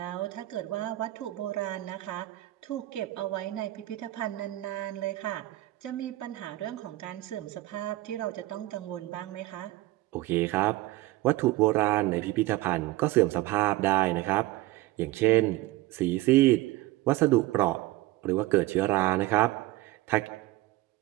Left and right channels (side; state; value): left; quieter; 17.6 dB